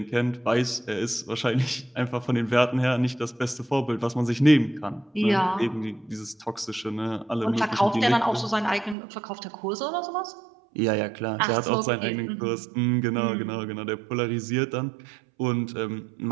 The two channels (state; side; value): drops out; left; at 9.0 s